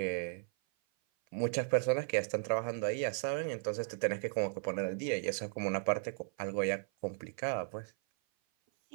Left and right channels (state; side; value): silent; left; 54 dB below the other